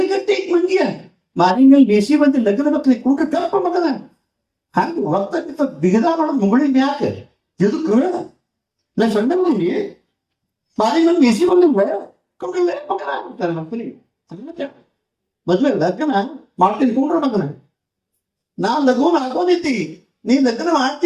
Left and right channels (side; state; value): both; identical; correlation 1.00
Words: ಮಂದಿಯ ಮಾರಿನಲ್ಲಿ ಬೇಸಿ ಬಂದು ಲಗ್ನ ಮಕ್ಕಳಿಗೆ ಕೂಟ ಕಲ್ಪ ಮಗನ ಹಂಗ ಹೊರತಕ್ಕಿಂತ ಬಿಗದ ಮಾಡೋದು ಮುಗುಳಿ ಯಾಕೆ ಎದಕ್ಕೆ ನಾ ಸಣ್ಣ ಮಂದಿ ಮಾರಿನಲ್ಲಿ ಬೇಸಿ ಬಂದಿಲ್ಲ ಕೊಂಡಲ್ಲೇ ಮಗನ ಅಂತಾರೆ ಮಕ್ಕಳಿಗೆ. ಮದ್ವೆ ಲಗ್ನ ಮಾಡ್ತೀನಿ ಕೊಂಡ್ರ ಮಗನ, ನಾ ಲಘುನ ಹಾಕೋದಿತ್ತಿ, ನೀ ಲಗ್ನ